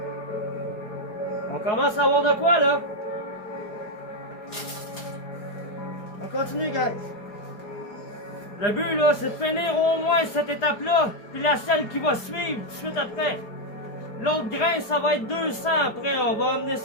On commence à avoir de quoi, là? On continue, guys. Le but, là, c'est de finir au moins cette étape-là, puis la celle qui va suivre tout de suite après. L'autre grain, ça va être 200 après. On va amener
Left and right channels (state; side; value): late; right; 4.8 ms